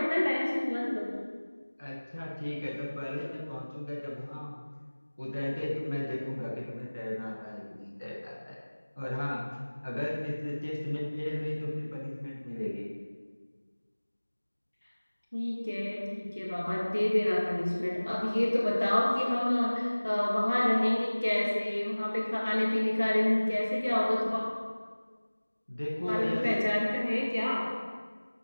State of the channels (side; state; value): both; inverted; correlation -1.00